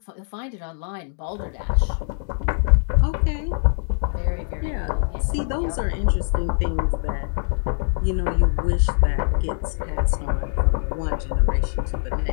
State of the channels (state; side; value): silent; right; digital silence